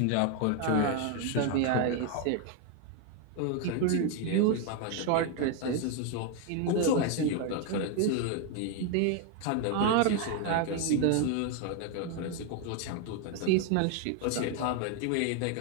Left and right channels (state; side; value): different; both; correlation 0.01